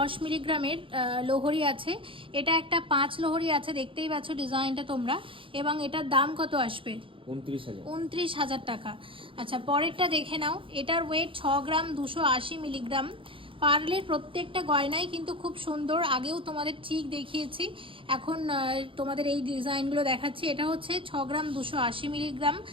মিলিগ্রামের লোহরি আছে। এটা একটা 5 লোহরি আছে, দেখতেই পাচ্ছ ডিজাইনটা তোমরা, এবং এটার দাম কত আসবে? 29,000 টাকা। আচ্ছা পরেরটা দেখে নাও, এটার ওয়েট 6 গ্রাম 280 মিলিগ্রাম। পার্লের প্রত্যেকটা গয়নাই কিন্তু খুব সুন্দর, আগেও তোমাদের চিক দেখিয়েছি, এখন তোমাদের এই ডিজাইনগুলো দেখাচ্ছি। এটা হচ্ছে 6 গ্রাম 280 মিলিগ্রাম,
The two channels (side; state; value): left; late; 0.25 ms